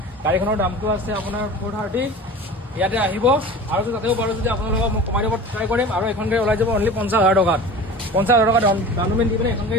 গাড়ীখনৰ দামটো আছে আপোনাৰ 430। ইয়াতে আহিব আৰু তাতেও পাৰোঁ যদি আপোনালোকক মই কমাই দিব ট্ৰাই কৰিম। আৰু এখন গাড়ী ওলাই যাব অনলি 50,000 টকাত। 50,000 টকা ডাউন পে'মেণ্ট দি পিনে এখন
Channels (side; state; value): both; normal; correlation 0.37